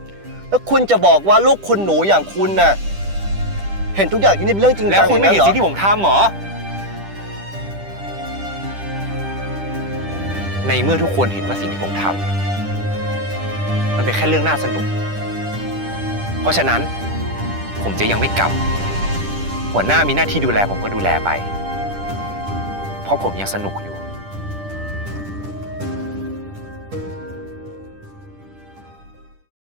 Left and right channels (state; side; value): late; left; 10 ms